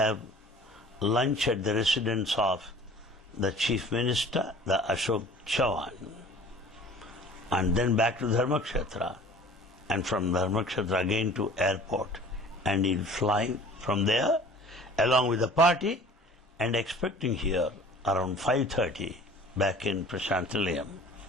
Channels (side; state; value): both; normal; correlation 0.47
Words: lunch at the residence of the Chief Minister, the Ashok Chavan. and then back to Dharmakshetra, and from Dharmakshetra again to airport, and he'll fly from there along with the party and expecting here around 5:30 back in Prashanti Nilayam.